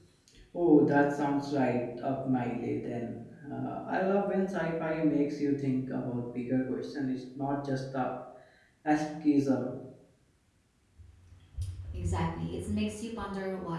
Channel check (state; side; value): identical; both; correlation 1.00